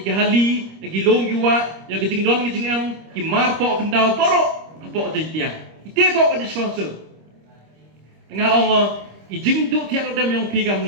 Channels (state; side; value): late; left; 25 ms